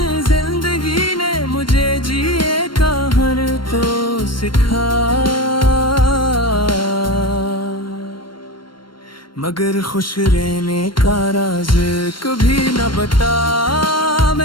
जिंदगी ने मुझे जिए का हर तो सिखा, मगर खुश रहने का राज कभी न बता।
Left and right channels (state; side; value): late; right; 0.72 ms